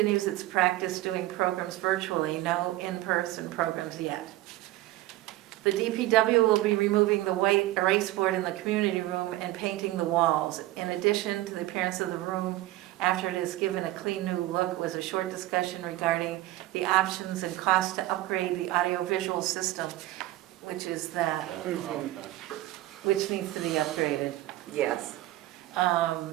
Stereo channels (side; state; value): left; quieter; 16.5 dB